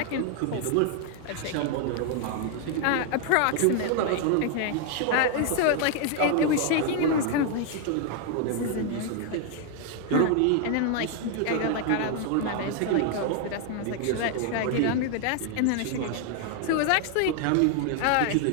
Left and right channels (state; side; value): different; both; correlation 0.00